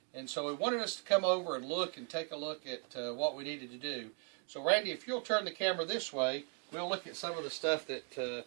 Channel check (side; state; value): left; quieter; 39.7 dB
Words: and so he wanted us to come over and look and take a look at what we needed to do. So Randy, if you'll turn the camera this way, we'll look at some of the stuff that